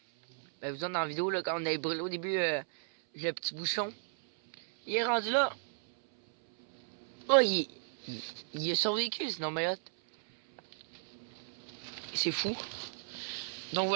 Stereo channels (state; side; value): silent; left; 55 dB below the other